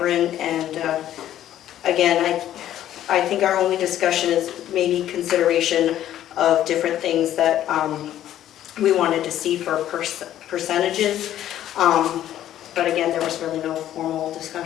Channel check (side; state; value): right; quieter; 12.0 dB